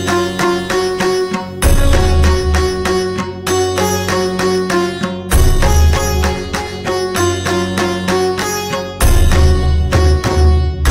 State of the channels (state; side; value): identical; both; correlation 1.00